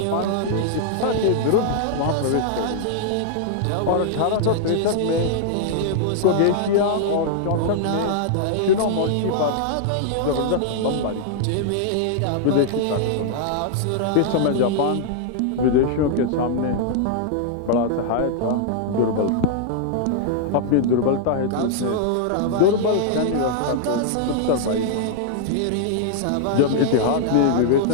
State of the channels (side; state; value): both; different; correlation -0.01